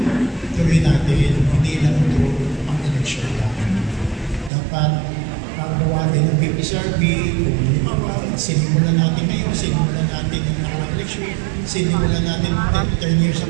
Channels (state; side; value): drops out; left; at 4.5 s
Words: tuloy natin, hindi lang ito ang election lang. Dapat gawain ng PPCRB, sinimulan natin ngayon, sinimulan natin ng nakarang election, sinimulan natin 10 years